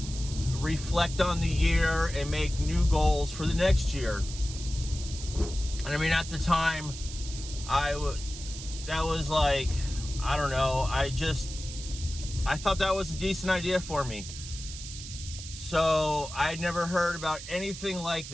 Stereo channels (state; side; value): noise; right; hiss, 11 dB below the sound